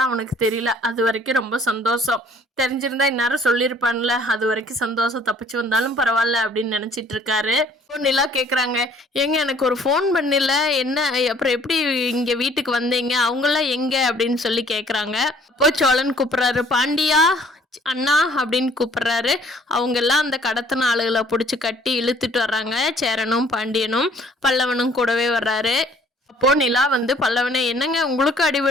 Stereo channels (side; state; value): both; normal; correlation 0.58